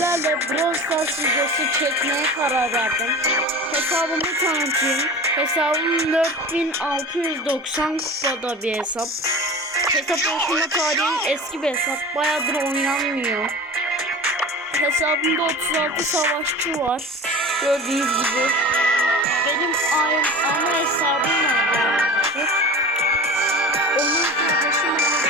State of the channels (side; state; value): both; normal; correlation 0.35